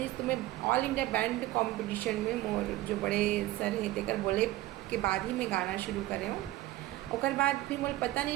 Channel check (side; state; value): left; quieter; 16.6 dB